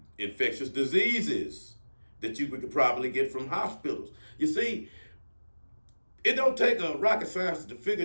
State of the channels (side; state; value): both; inverted; correlation -1.00